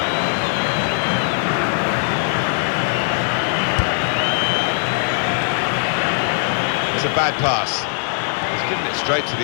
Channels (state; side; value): silent; right; 66 dB below the other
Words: It's a bad pass. He's given it straight to